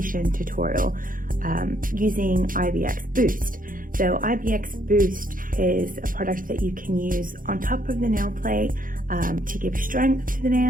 tutorial using IBX Boost. So IBX Boost is a product that you can use on top of the nail plate to give strength to the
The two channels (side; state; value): left; late; 0.40 ms